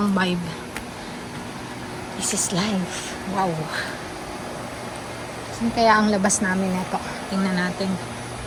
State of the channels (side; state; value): both; identical; correlation 1.00